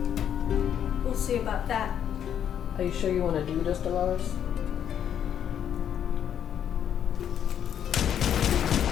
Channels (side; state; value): right; quieter; 9.3 dB